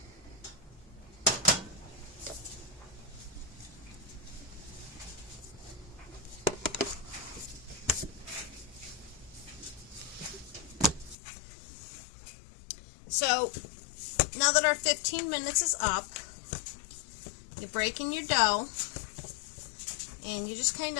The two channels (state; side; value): drops out; right; at 11.2 s